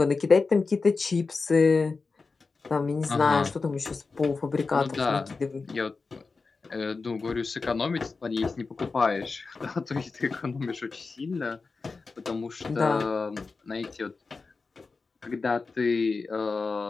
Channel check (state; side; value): quieter; right; 4.3 dB